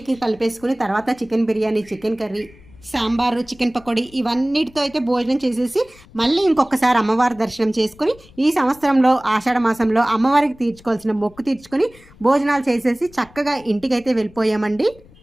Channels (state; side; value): noise; left; rumble, 25 dB below the sound